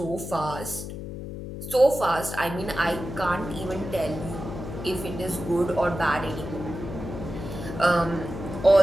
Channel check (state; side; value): noise; left; hum, 8 dB below the sound